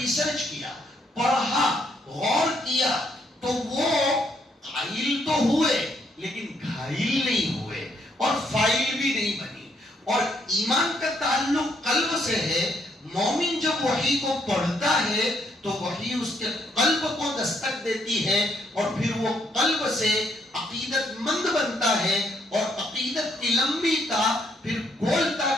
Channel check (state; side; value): normal; both; correlation 0.72